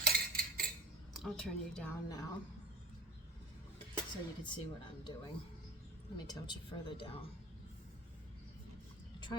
I'll turn you down now so you can see what I'm doing. Let me tilt you further down. I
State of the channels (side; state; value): both; normal; correlation 0.32